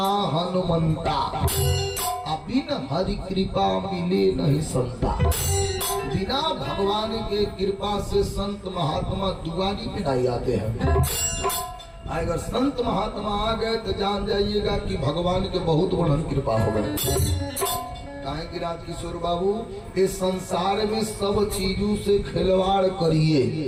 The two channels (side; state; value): both; identical; correlation 1.00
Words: हनुमंता, बिन हरि कृपा मिले नहीं संता। बिना भगवान के कृपा से संत महात्मा दुआरी पे नहीं आते हैं। अगर संत महात्मा आ गए तो जान जाइएगा कि भगवान के बहुत बड़ी कृपा हो गए। कहें कि राजकिशोर बाबू इस संसार में सब चीजों से खिलवाड़ करिए,